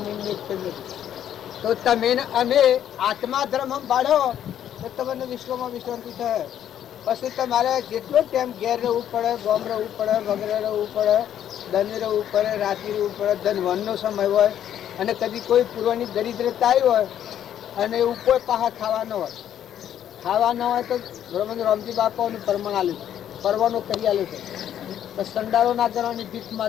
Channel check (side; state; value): right; quieter; 10.4 dB